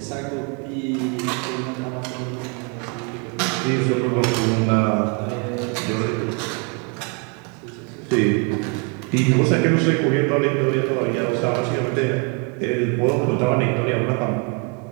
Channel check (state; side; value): quieter; left; 35.5 dB